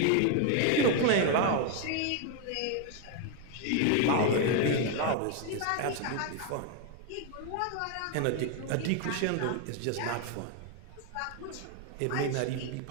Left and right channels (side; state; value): both; different; correlation 0.01